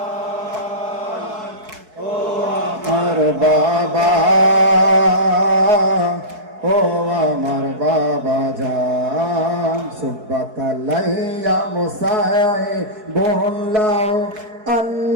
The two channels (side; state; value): left; late; 4.6 ms